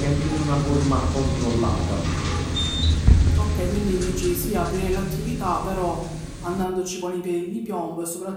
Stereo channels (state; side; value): identical; both; correlation 1.00